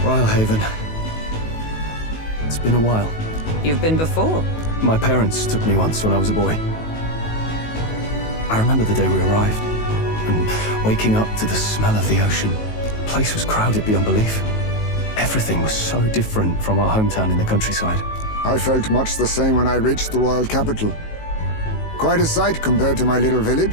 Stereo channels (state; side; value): late; right; 19 ms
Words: Rhylehaven. It's been a while. You've been before. My parents took me once when I was a boy. I remember the day we arrived, and waking up to the smell of the ocean. The place was crowded beyond belief. Everything was so different from our hometown in the countryside. I felt much the same when I reached the royal capital. Quite a sight compared to my little